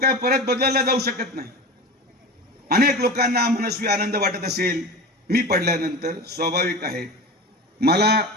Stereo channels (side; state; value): both; normal; correlation 0.30